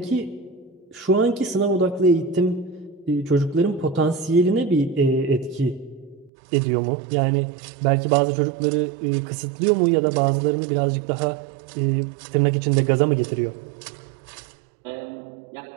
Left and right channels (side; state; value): left; drops out; at 6.3 s